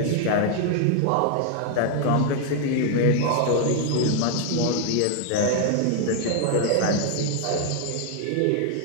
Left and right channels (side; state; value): both; different; correlation 0.00